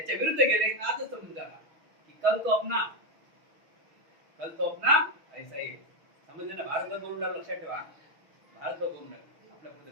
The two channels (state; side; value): late; left; 6.3 ms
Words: विरुद्ध गेले तर आजच समजून झाला की कल तो अपना ऐसा ही. समजले ना? भारतभर बोलून राहिलं, लक्षात ठेवा. भारतभर बोलून राहिलं, आपल्या पुढे